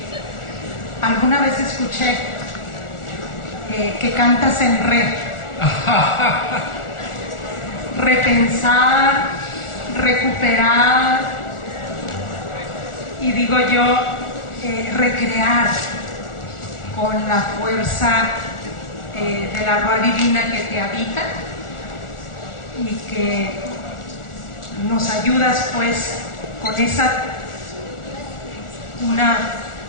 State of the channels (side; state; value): right; late; 1.4 ms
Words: alguna vez escuché que cantas en re. Repensar, recuperar y digo yo, recrear con la fuerza de la Ruá Divina que te habita y que nos ayudas pues con una